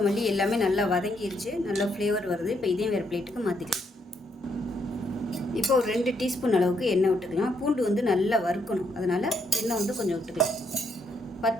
எல்லாமே நல்லா வதங்கிருச்சு, நல்லா ஃப்ளேவர் வருது. இப்போ இதையும் வேறு பிளேட்டுக்கு மாற்றிக்கலாம். இப்போ ஒரு 2 டீஸ்பூன் அளவுக்கு எண்ணெய் விட்டுக்கலாம். பூண்டு வந்து நல்லா வறுக்கணும், அதனால் எண்ணெய் வந்து கொஞ்சம் விட்டுக்கலாம்.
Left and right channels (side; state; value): both; normal; correlation 0.75